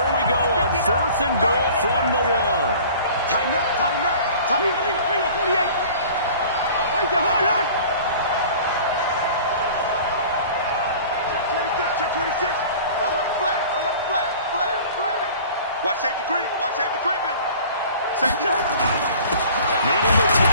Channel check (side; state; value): both; inverted; correlation -0.45